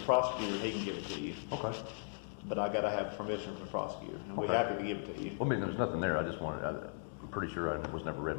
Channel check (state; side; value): silent; right; digital silence